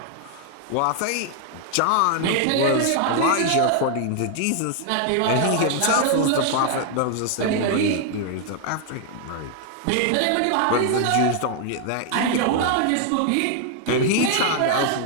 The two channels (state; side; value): different; both; correlation 0.00